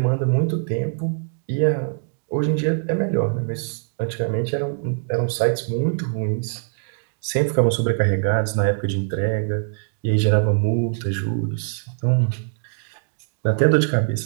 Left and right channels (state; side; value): silent; left; 64 dB below the other